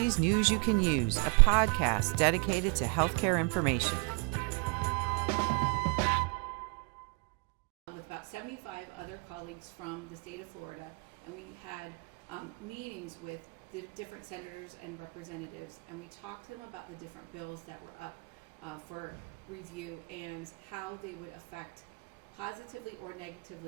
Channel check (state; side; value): quieter; left; 33.6 dB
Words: News You Can Use, a podcast dedicated to healthcare information. With about 75 other colleagues from the state of Florida, and we had meetings with the different senators and representatives, and we talked to them about the different bills that were up for review and how they would affect positively or